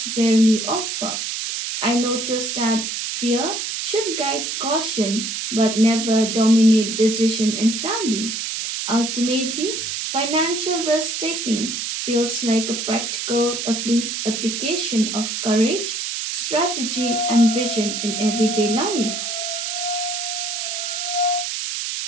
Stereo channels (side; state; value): right; noise; hiss, 3 dB below the sound